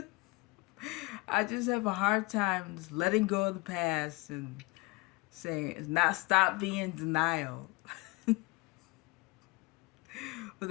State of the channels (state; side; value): quieter; right; 25.1 dB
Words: I just have a hard time just letting go of the past and saying it's not stop being in denial. But